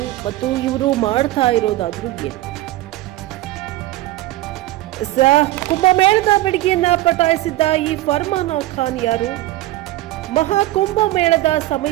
ಮತ್ತು ಇವರು ಮಾಡ್ತಾ ಇರೋದಾದ್ರೂ ಏನು? ಕುಂಭಮೇಳದ ಬೆಡಗಿಯನ್ನ ಪಟಾಯಿಸಿದ್ದ ಈ ಫರ್ಮಾನ ಖಾನ್ ಯಾರು? ಮಹಾಕುಂಭಮೇಳದ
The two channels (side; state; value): left; quieter; 16.7 dB